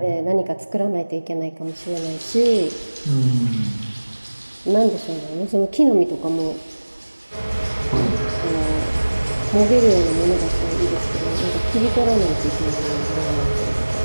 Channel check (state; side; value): inverted; both; correlation -1.00